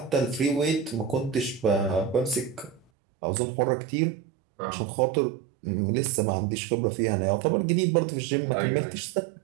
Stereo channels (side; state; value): left; drops out; at 2.8 s